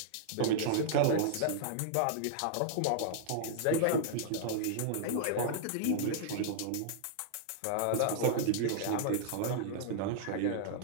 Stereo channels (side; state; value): both; different; correlation -0.01